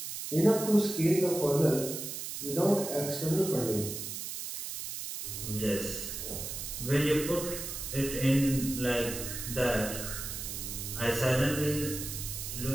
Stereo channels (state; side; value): noise; right; hiss, 6 dB below the sound